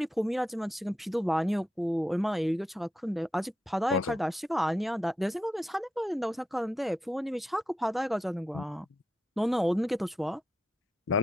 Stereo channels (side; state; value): both; normal; correlation 0.86